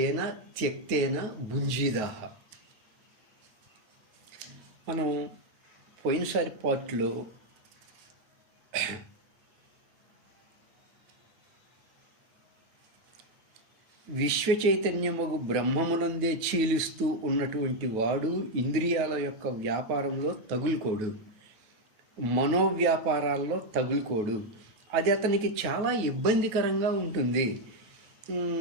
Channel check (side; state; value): left; late; 9.2 ms